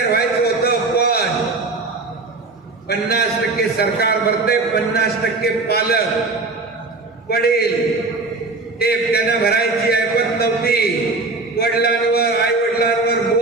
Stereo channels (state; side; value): quieter; left; 3.6 dB